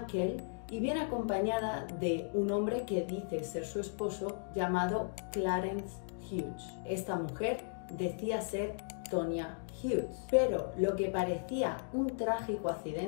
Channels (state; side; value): silent; right; digital silence